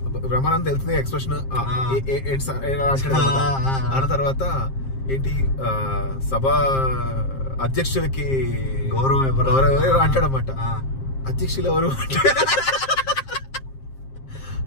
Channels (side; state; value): right; late; 7.5 ms